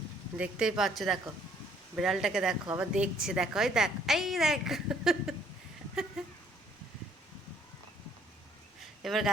দেখতেই পাচ্ছ। দেখো বিড়ালটাকে, দেখো আবার দেখছে। দেখো, এই দেখ, এই দেখ। এবার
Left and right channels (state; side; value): normal; both; correlation 0.62